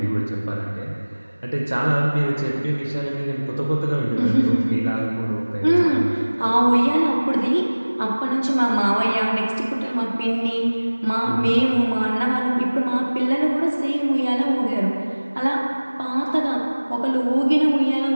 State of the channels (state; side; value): inverted; both; correlation -1.00